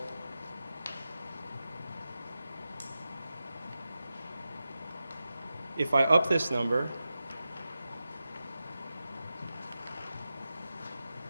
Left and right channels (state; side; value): inverted; both; correlation -0.92